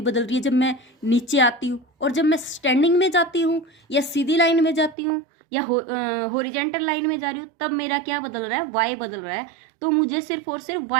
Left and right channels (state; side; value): drops out; left; at 5.0 s